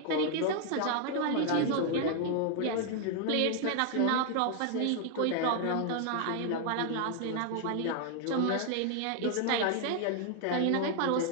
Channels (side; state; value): both; different; correlation 0.00